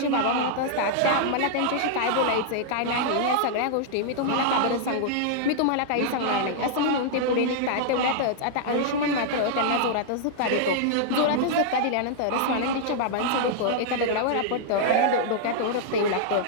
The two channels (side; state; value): both; different; correlation -0.01